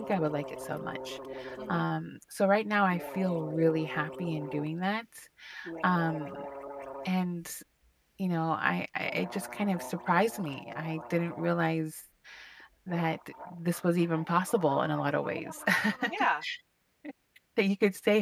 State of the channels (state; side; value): identical; both; correlation 1.00